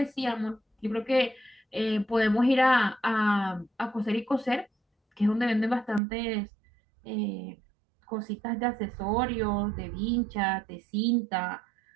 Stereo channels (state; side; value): drops out; left; at 6.0 s